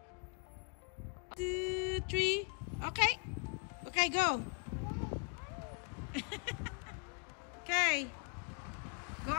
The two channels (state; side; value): quieter; right; 36.3 dB